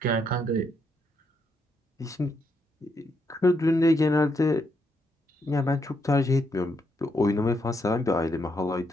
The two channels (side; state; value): both; normal; correlation 0.78